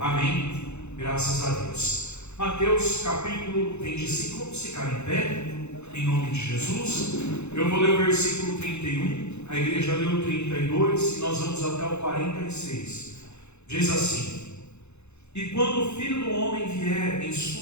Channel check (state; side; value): late; right; 0.81 ms